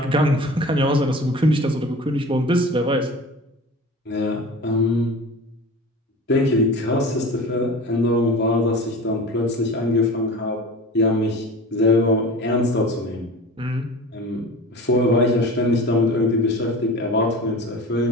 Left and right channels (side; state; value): both; normal; correlation 0.36